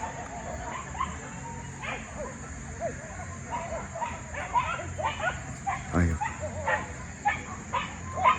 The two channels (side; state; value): both; identical; correlation 1.00